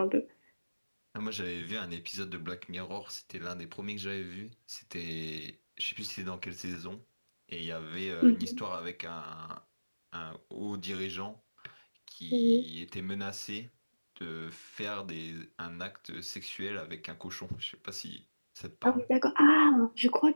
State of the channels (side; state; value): both; inverted; correlation -1.00